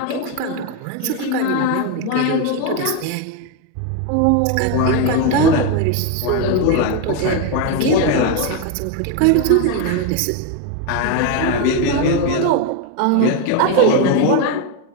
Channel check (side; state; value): both; different; correlation 0.02